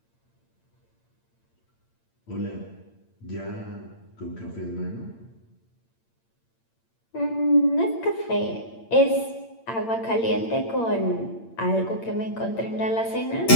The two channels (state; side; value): late; right; 8.8 ms